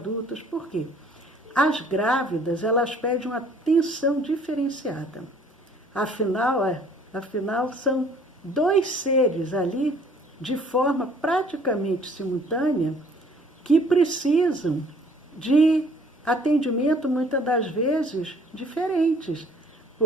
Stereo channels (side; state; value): both; normal; correlation 0.57